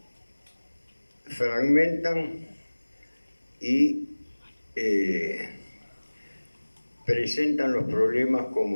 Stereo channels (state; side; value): inverted; both; correlation -1.00